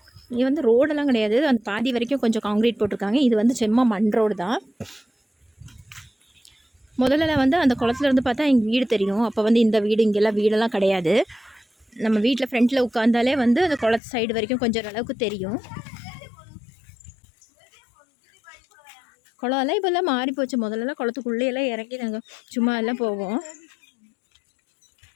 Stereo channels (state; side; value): drops out; right; at 14.0 s